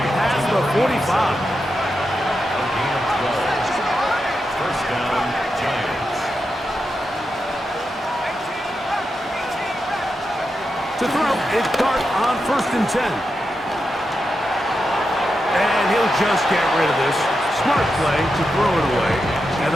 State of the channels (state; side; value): normal; both; correlation 0.87